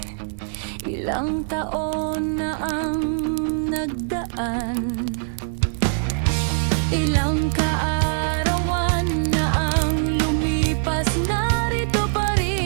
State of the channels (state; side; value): silent; left; 63 dB below the other